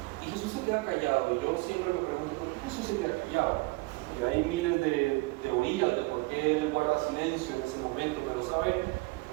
Y Jesús se queda callado, y yo siempre me pregunto, ¿por qué Jesús se queda callado? Y hay miles de teorías de por qué Él guarda silencio en ese momento, pero ¿sabe?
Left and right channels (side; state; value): left; quieter; 24.2 dB